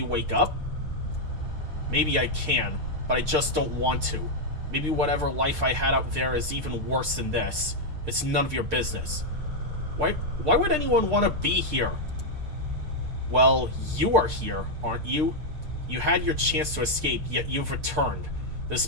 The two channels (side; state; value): left; late; 6.7 ms